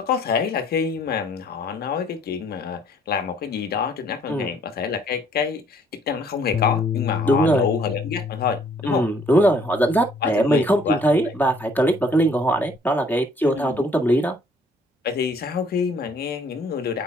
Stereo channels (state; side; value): normal; both; correlation 0.61